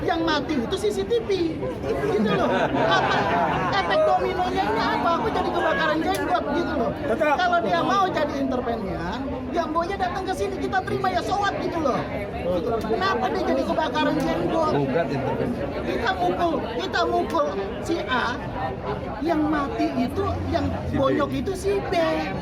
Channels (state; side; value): identical; both; correlation 1.00